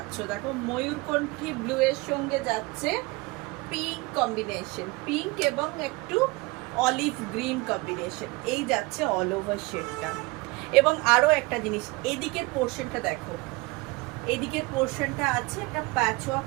দেখো ময়ূরকণ্ঠী ব্লু এর সঙ্গে যাচ্ছে পিঙ্ক কম্বিনেশন, পিঙ্ক এবং একটু অলিভ গ্রিন কম্বিনেশন, এই যাচ্ছে অল ওভার শেডটা। এবং আরো একটা জিনিস, এদিকের পোর্শনটা দেখো, এদিকের পোর্শনটা আছে একটা প্যাচওয়ার্ক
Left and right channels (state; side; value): quieter; left; 24.3 dB